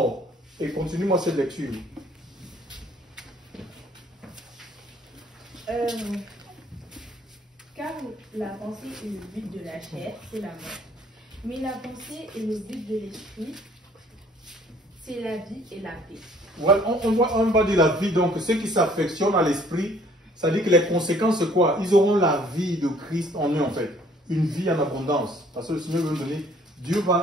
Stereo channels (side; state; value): both; normal; correlation 0.58